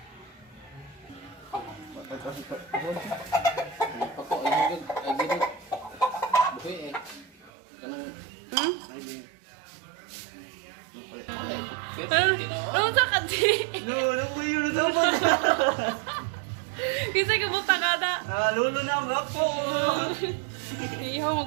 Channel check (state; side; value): drops out; left; at 7.5 s